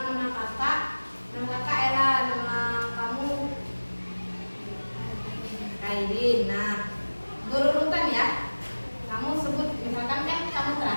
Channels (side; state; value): both; inverted; correlation -1.00